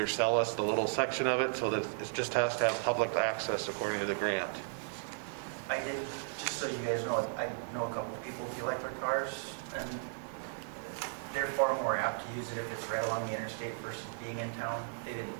sell us the little section of it so that it just has to have public access according to the grant. I did, just so you guys know, I know a couple of people with electric cars, and they're far more apt to use it if it's right along the interstate versus being in town. They didn't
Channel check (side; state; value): left; silent; digital silence